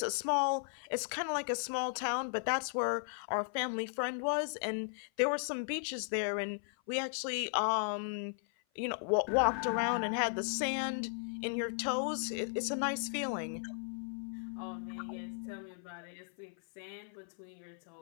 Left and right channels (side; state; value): right; silent; 54 dB below the other